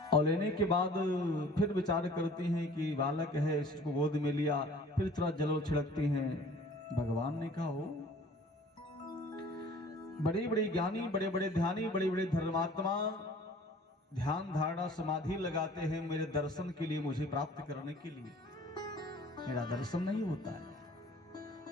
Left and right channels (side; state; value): both; normal; correlation 0.49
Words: और लेने के बाद फिर विचार करती हैं कि बालक है, इसको गोद में लिया, फिर थोड़ा जल छिड़कती हैं। भगवान ने कहा, हो बड़े बड़े ज्ञानी, बड़े बड़े ध्यानी, बड़े बड़े धर्मात्मा ध्यान धारणा समाधि लगाते हैं मेरे दर्शन के लिए, मुझे प्राप्त करने के लिए। मेरा दर्शन नहीं होता है